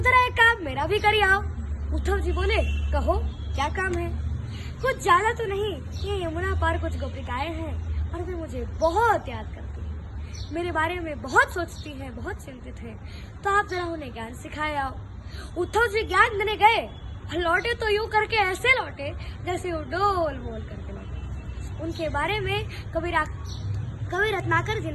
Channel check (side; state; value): both; identical; correlation 1.00